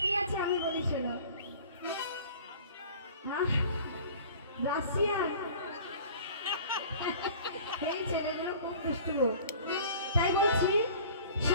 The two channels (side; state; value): both; inverted; correlation -0.45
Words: কি আছে আমি বলি শোনো। হ্যাঁ, রাশিয়া। এই ছেলেগুলো খুব দুষ্টু। তাই বলছি